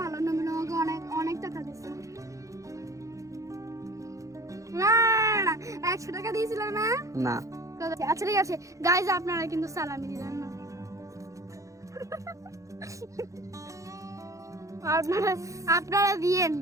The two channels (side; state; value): left; late; 0.15 ms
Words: ভালো। নবীন আমাকে অনেক অনেক টাকা দিচ্ছে। না না 100 টাকা দিয়েছিল না? না আচ্ছা ঠিক আছে গাইজ, আপনারা কিন্তু সালামি দিলেন না। আপনারা দিয়েন